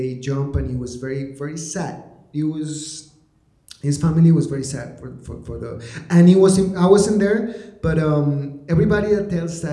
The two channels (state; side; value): identical; both; correlation 1.00